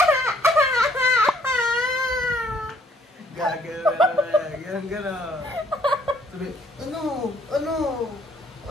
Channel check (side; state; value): both; normal; correlation 0.64